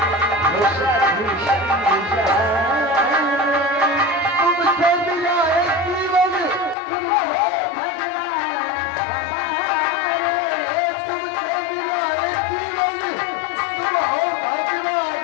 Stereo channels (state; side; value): drops out; right; at 6.8 s